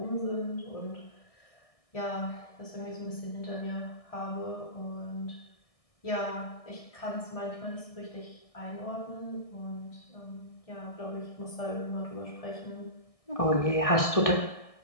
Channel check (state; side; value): late; right; 1.6 ms